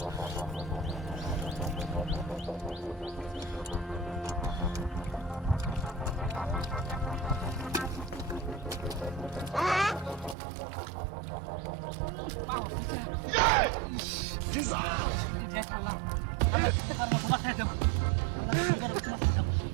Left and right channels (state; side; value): drops out; left; at 10.4 s